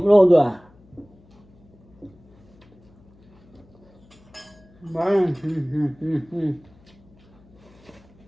luôn rồi à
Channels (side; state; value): left; noise; hum, 28 dB below the sound